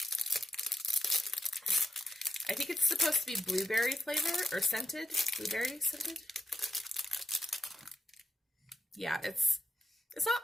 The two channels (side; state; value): both; normal; correlation 0.83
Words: I think it's supposed to be blueberry flavor or scented. Blueberry scented. Yeah, it's